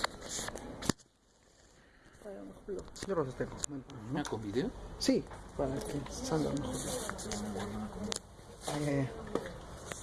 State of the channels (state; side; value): identical; both; correlation 1.00